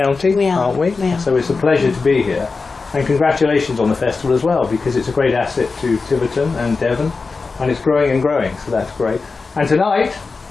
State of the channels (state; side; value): quieter; right; 4.3 dB